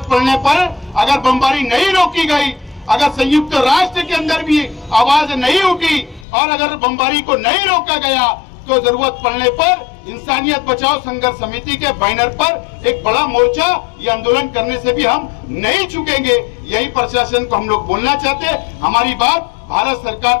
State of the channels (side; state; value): right; drops out; at 6.2 s